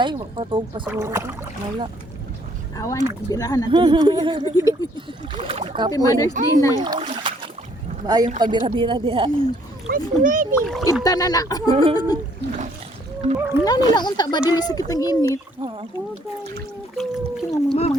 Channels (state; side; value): normal; both; correlation 0.64